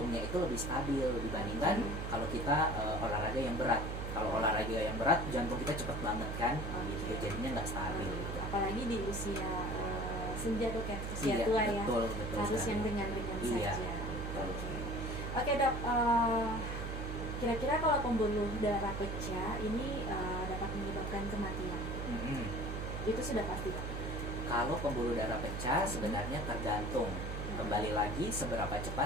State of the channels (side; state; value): right; noise; hum, 4 dB below the sound